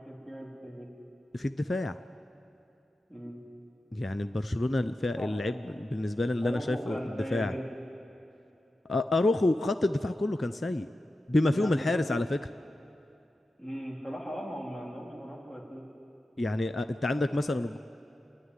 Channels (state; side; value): normal; both; correlation 0.92